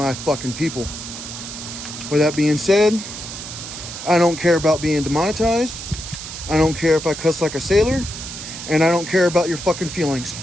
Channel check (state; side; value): noise; right; hiss, 9 dB below the sound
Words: fucking people. With that being said, I don't care about being demonetized. I don't care if I cuss like a sailor. And I don't care about your fucking feelings.